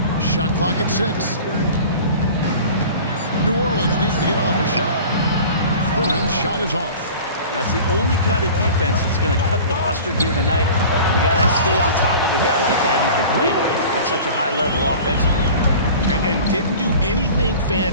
Shot clock at 6. New Orleans needs to get off a shot. Thurin's shot is off. That's the only kind of defense that's going to cut the mustard here tonight. You got to stay on top of a guy like that who can play at such a high level offensively. And didn't do anything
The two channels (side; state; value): both; inverted; correlation -0.40